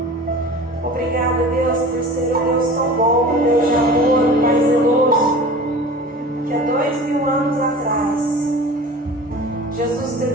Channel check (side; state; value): both; normal; correlation 0.38